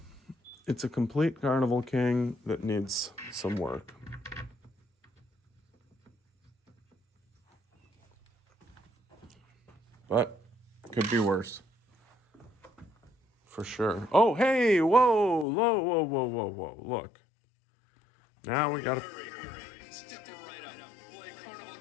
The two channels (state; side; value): drops out; right; at 15.5 s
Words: it's a complete Carnival King that needs some work. But could be worse. For sure. Oh, hey, whoa, whoa. Look. Now we gotta. Step right up. Play Carnival